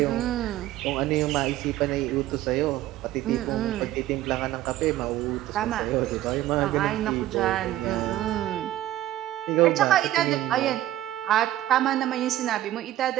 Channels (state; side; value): quieter; left; 14.1 dB